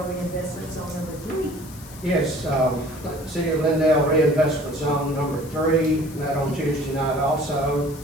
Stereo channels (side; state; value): left; noise; hiss, 19 dB below the sound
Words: Reinvestment Zone number 3? Yes, City of Glendale Reinvestment Zone number 3, met on Tuesday night also.